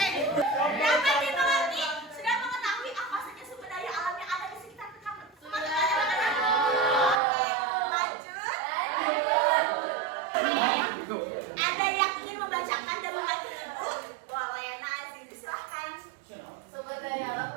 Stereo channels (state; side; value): drops out; left; at 7.2 s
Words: Dapat dimengerti, sudah mengetahui apa saja sumber daya alam yang ada di sekitar kamu. Oke, lanjut. Ada yang ingin membacakan dan membantu ibu? Boleh, Nazi, silahkan. Sumber daya alam